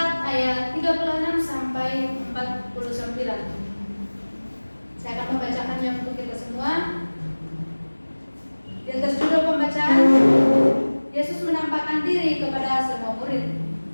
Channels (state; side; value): inverted; both; correlation -1.00